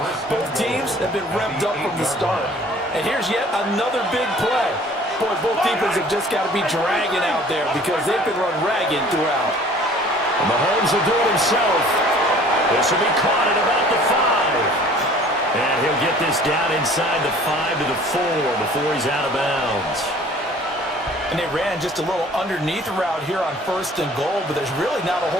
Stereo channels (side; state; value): both; normal; correlation 0.51